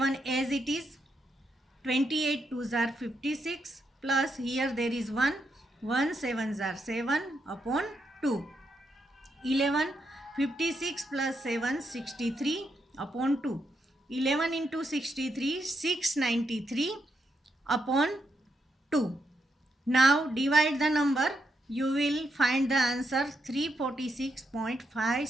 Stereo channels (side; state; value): both; normal; correlation 0.81